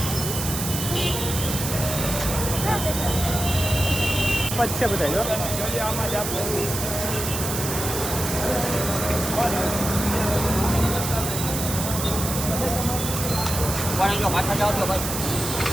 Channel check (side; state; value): right; noise; hiss, 4 dB below the sound